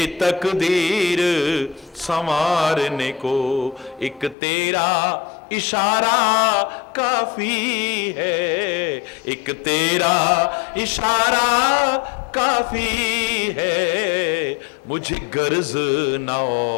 तकदीर संवारने को, एक तेरा इशारा काफी है, एक तेरा इशारा काफी है, मुझे गर्ज न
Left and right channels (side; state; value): right; drops out; at 4.4 s